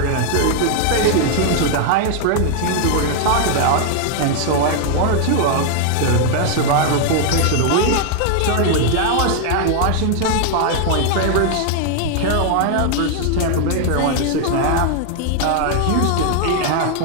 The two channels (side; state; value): both; different; correlation 0.00